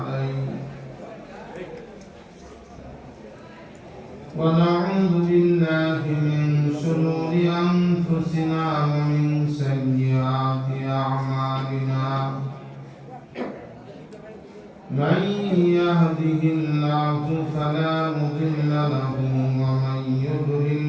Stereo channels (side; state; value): both; identical; correlation 1.00